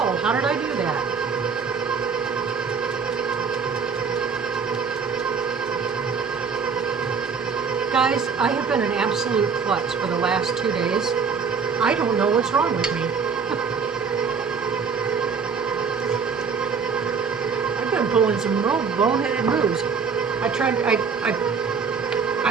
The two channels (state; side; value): quieter; left; 5.8 dB